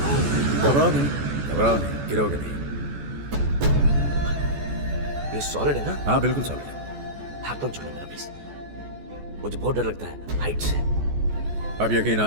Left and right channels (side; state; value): left; late; 14 ms